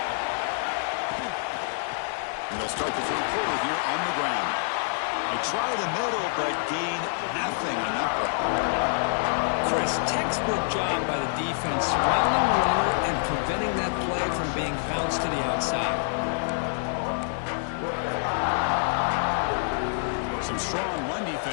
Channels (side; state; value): right; silent; 59 dB below the other